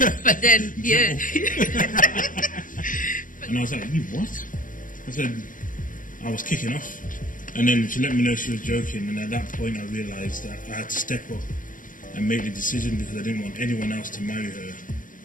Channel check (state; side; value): late; right; 0.39 ms